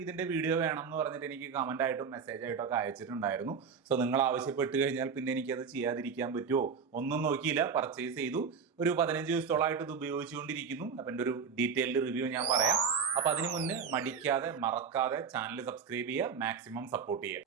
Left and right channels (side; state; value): left; quieter; 6.0 dB